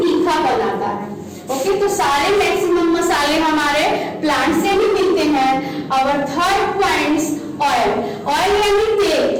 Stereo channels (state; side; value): identical; both; correlation 1.00